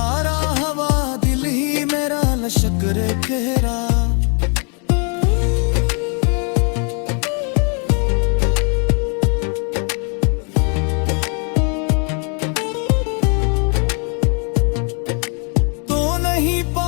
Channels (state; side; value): quieter; right; 38.9 dB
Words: हवा दिल ही मेरा लश्कर कहरा।